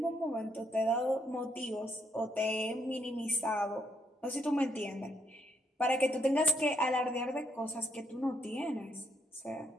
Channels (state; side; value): normal; both; correlation 0.73